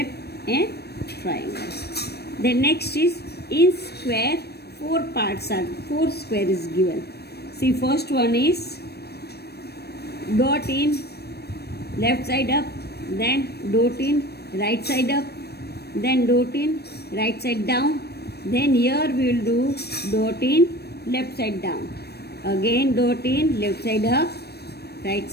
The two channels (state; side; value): late; right; 0.47 ms